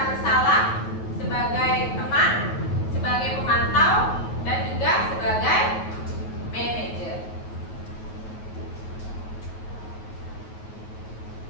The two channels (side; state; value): right; late; 9.9 ms